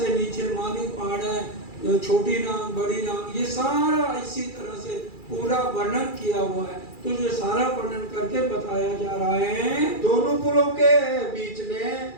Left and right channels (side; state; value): right; late; 2.3 ms